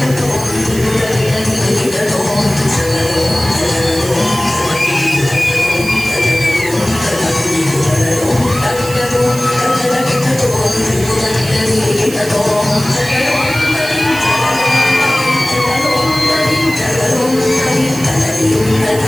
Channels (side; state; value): right; noise; hiss, 13 dB below the sound